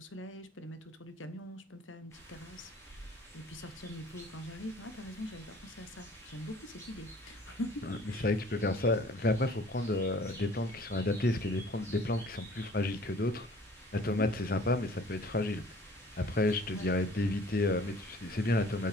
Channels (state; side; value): normal; both; correlation 0.52